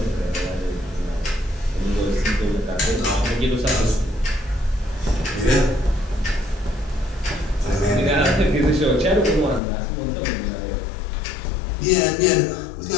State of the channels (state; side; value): drops out; right; at 9.6 s